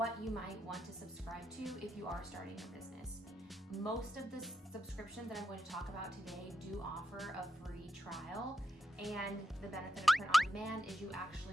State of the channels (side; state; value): both; normal; correlation 0.86